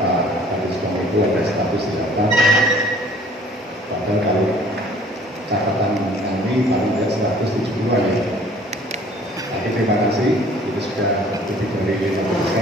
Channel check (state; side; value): normal; both; correlation 0.54